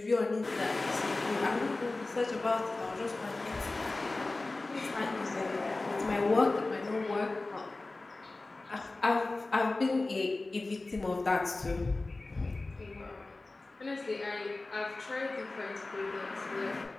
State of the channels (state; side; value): quieter; right; 3.2 dB